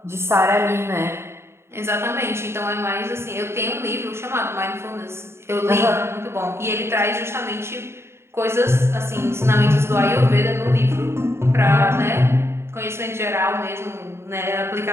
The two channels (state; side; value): late; left; 0.12 ms